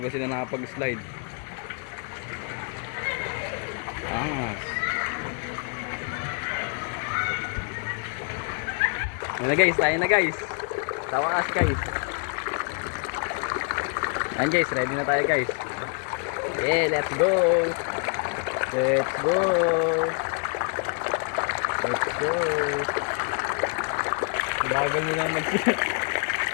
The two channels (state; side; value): quieter; right; 37.6 dB